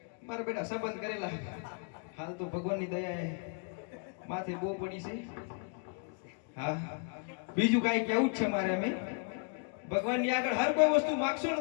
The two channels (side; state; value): right; quieter; 36.6 dB